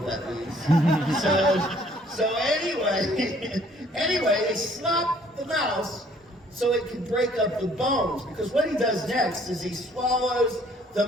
that means. So anyway, they slap the mouse so it can break up the bones, because what he does next is he swallows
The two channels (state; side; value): normal; both; correlation 0.60